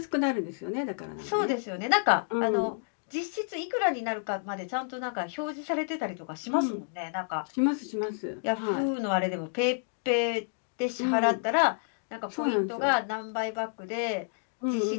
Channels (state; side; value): silent; right; digital silence